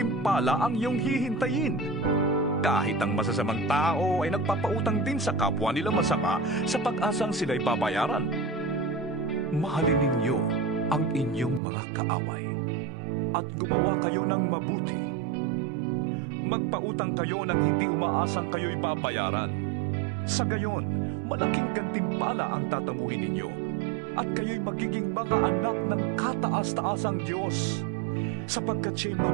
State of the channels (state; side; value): drops out; left; at 11.6 s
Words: ang iyong hihintayin? Kahit ang masasamang tao ay nagpapautang din sa kapwa nila masama sa pag-asang sila'y babayaran. Mahalin ninyo ang inyong mga kaaway at gumawa kayo ng mabuti. Magpautang kayo nang hindi umaasang kayo'y babayaran. Sa gayon, malaking gantimpala ang tatamuhin ninyo at kayo'y magiging mga anak ng kataas-taasang Diyos, sapagkat siya'y